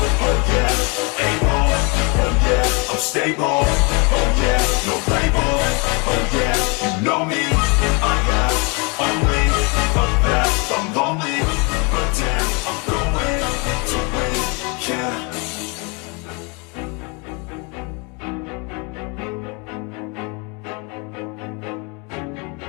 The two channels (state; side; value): quieter; right; 31.6 dB